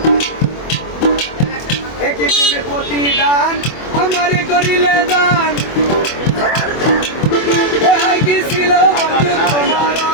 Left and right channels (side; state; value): right; late; 24 ms